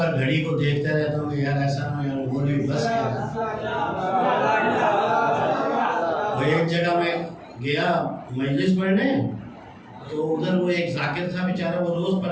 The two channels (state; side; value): identical; both; correlation 1.00